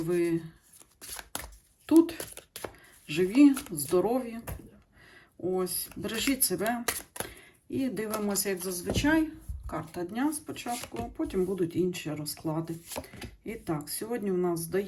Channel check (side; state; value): both; identical; correlation 1.00